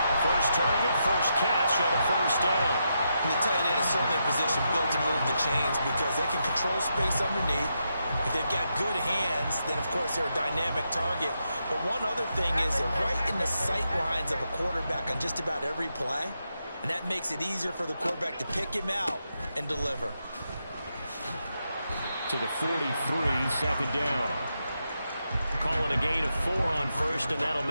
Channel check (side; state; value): both; inverted; correlation -0.84